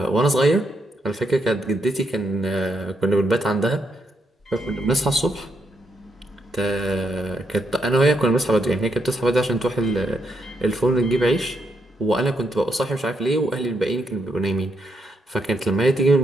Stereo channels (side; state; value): both; normal; correlation 0.78